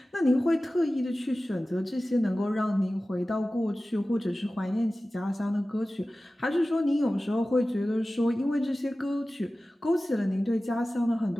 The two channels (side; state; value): both; normal; correlation 0.96